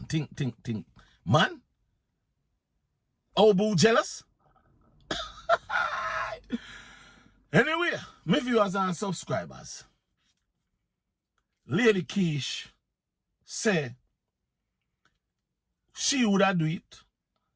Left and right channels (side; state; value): both; identical; correlation 1.00